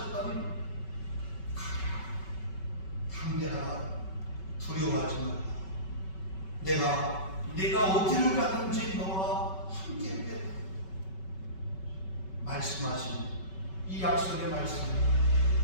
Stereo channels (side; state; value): right; late; 5.3 ms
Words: 담대하라, 두려워하지 마라. 내가 어디를 가든지 너와 함께 하겠다. 말씀하신 이 약속의 말씀,